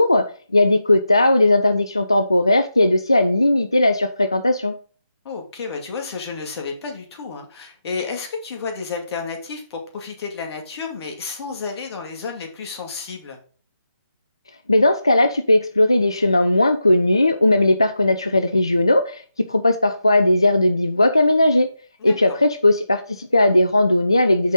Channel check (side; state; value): both; inverted; correlation -0.89